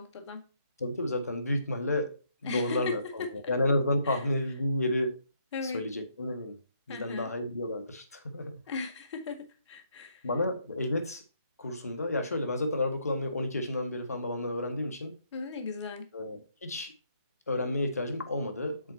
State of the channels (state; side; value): inverted; both; correlation -0.72